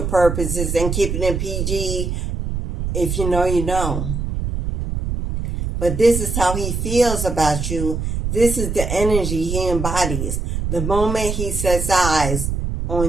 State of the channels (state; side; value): noise; right; rumble, 3 dB below the sound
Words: purposes and keeping it PG, if you know, you know. But this is how he feels about you. This is the energy he embodies the moment he sets eyes